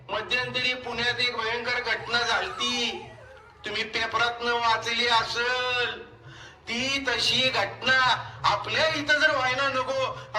मध्यंतरी पुण्यात एक भयंकर घटना झालती, तुम्ही पेपरातनं वाचली असेल. ती तशी घटना आपल्या इथं जर व्हायला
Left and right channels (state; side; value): identical; both; correlation 1.00